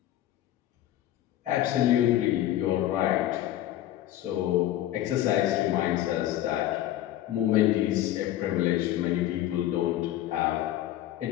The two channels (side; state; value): right; quieter; 13.4 dB